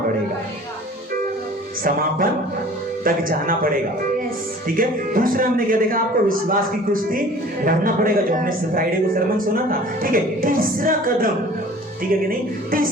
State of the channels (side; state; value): both; normal; correlation 0.47